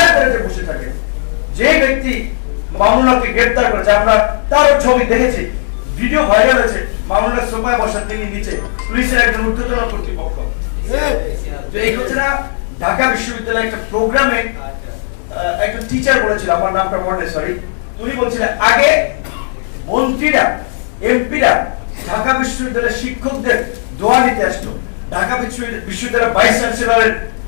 তলাতে বসে থাকে। যে ব্যক্তি মামুনুলকে গ্রেপ্তার করেছে, আমরা তার ছবি দেখেছি, ভিডিও ভাইরাল হয়েছে, মামুনুল সোফায় বসা, তিনি নিচে, পুলিশের একজন ঊর্ধ্বতন কর্তৃপক্ষ। এই কথাটা ঢাকা বিশ্ববিদ্যালয়ের একটা প্রোগ্রামে একটা টিচার বলেছিল, আমার নামটা মনে সরি, উনি বলছিলেন আগে মন্ত্রীরা, এমপিরা ঢাকা বিশ্ববিদ্যালয়ের শিক্ষকদের দোয়া নিতে আসতো, ঢাকা বিশ্ববিদ্যালয়ের ভাইস চ্যান্সেলরের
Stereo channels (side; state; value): right; silent; digital silence